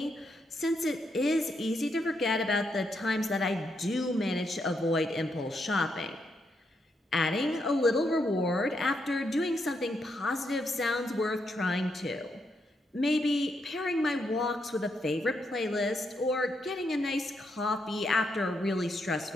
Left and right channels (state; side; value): normal; both; correlation 0.79